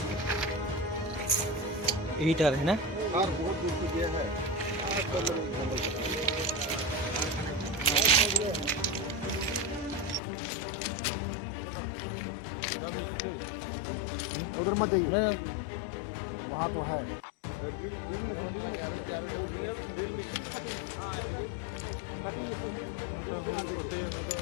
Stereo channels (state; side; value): drops out; right; at 10.2 s